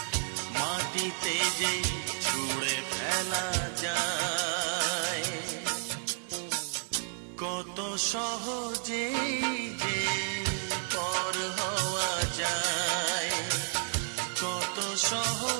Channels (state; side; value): silent; left; 57 dB below the other